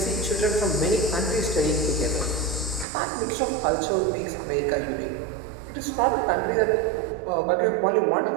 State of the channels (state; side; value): drops out; left; at 2.9 s